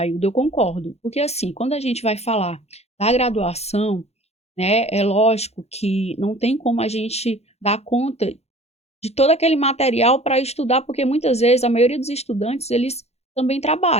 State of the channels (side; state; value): right; late; 0.31 ms